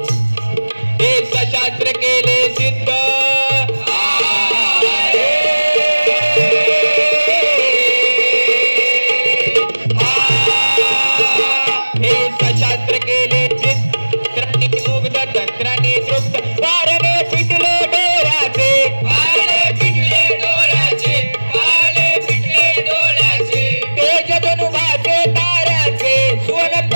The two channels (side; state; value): both; inverted; correlation -1.00